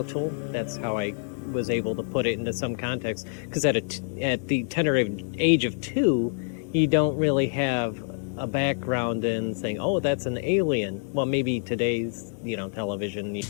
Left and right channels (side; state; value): right; silent; 60 dB below the other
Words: That's how I was able to put it into some context, because at the tender age of 2, you don't really have a background in saying, oh, that's an alien. Well, maybe today's television.